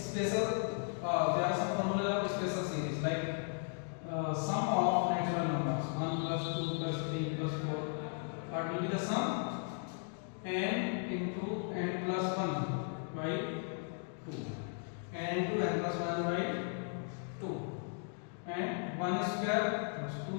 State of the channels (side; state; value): right; silent; 54 dB below the other